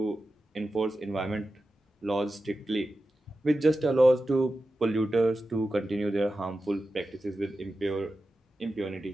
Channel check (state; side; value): normal; both; correlation 0.92